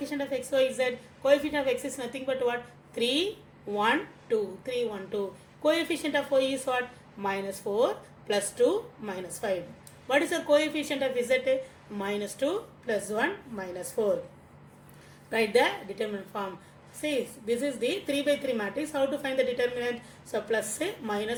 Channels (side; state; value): both; identical; correlation 1.00